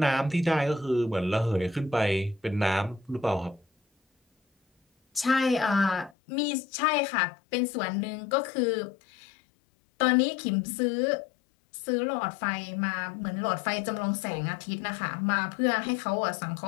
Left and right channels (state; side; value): drops out; right; at 6.1 s